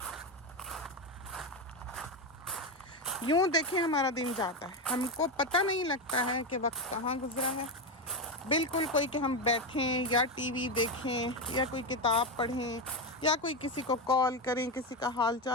यूँ देखें हमारा दिन जाता है, हमको पता नहीं लगता है कि वक्त कहाँ गुजरा है। बिल्कुल कोई कि हम बैठें या टीवी देखें या कोई किताब पढ़ें या कोई किसी को कॉल करें, किसी का हाल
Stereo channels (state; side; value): normal; both; correlation 0.12